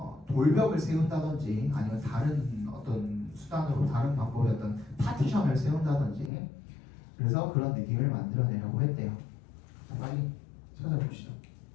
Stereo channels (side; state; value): right; drops out; at 6.3 s